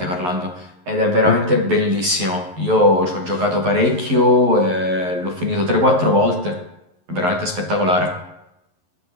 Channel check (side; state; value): left; late; 11 ms